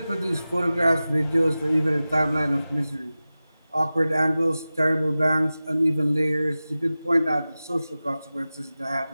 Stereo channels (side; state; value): both; inverted; correlation -0.96